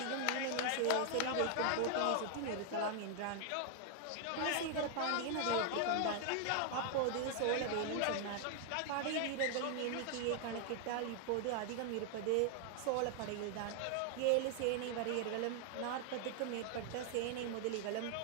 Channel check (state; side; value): different; both; correlation 0.00